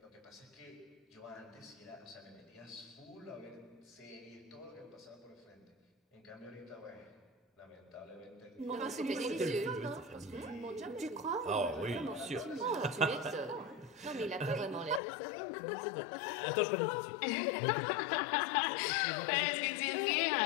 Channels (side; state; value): right; drops out; at 15.0 s